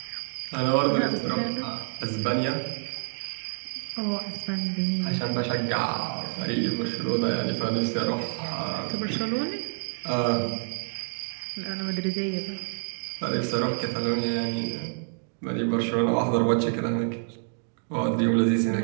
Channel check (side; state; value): left; silent; digital silence